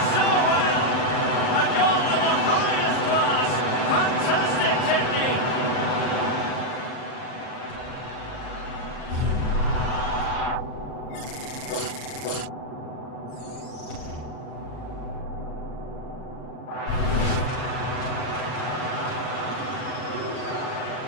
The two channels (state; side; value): late; right; 39 ms